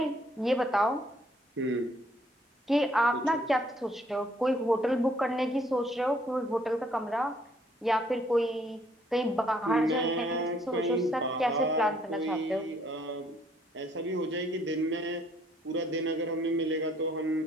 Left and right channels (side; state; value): both; normal; correlation 0.65